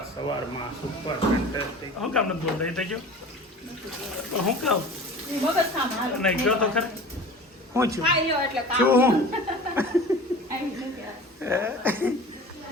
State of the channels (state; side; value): normal; both; correlation 0.39